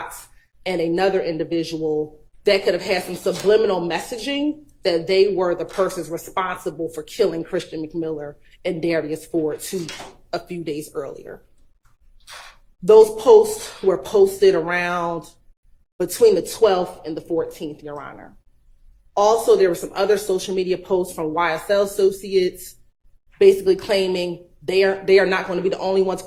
and another individual that could have had some subliminal messaging that they were the persons responsible for killing Christian McMiller and Darius Ford a few days earlier. Those posts were posted around between the 12th and the 14th, Your Honor. Also, there were some other social media posts from YSL associates basically claiming they are not going to be the only ones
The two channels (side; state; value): both; identical; correlation 1.00